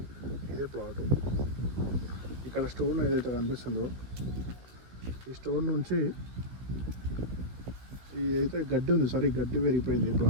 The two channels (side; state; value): left; late; 16 ms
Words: ఇదే ప్లాట్. ఇక్కడ స్టోన్ ఏదైతే కనిపిస్తుందో ఈ స్టోన్ నుంచి ఈ అయితే గడ్డి ఉంది సార్, ఈ గడ్డి పెరిగిపోయింది ఈ